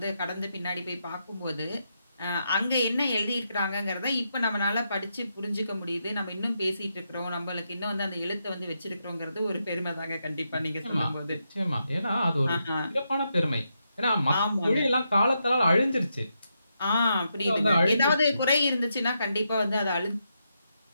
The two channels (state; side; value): inverted; both; correlation -0.83